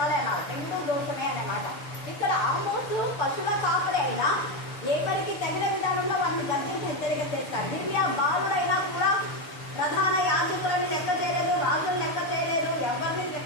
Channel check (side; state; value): right; late; 6.7 ms